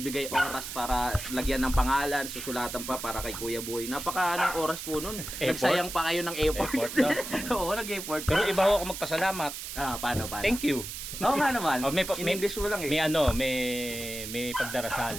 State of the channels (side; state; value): right; noise; hiss, 8 dB below the sound